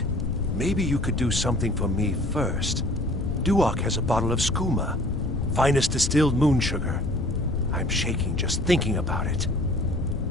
Maybe you could do something for me first. Duok has a bottle of skooma, finest distilled moon sugar. I'm shaking just thinking about it.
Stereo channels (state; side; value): noise; left; rumble, 3 dB below the sound